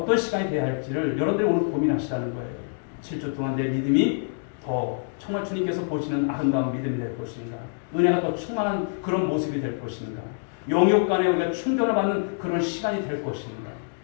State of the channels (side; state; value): right; silent; digital silence